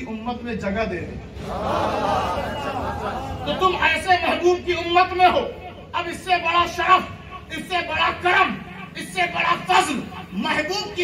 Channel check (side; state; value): both; identical; correlation 1.00